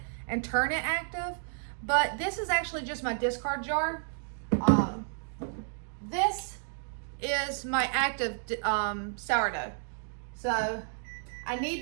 and turn it active, but this is actually just my discard jar. This is my active sourdough. So I need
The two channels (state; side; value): silent; left; digital silence